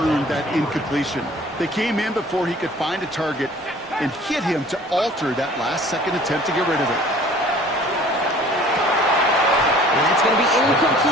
that incompletion. They came in before he could find a target and hit him to alter that last-second attempt to get rid of it. And that's going to be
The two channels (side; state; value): both; normal; correlation 0.50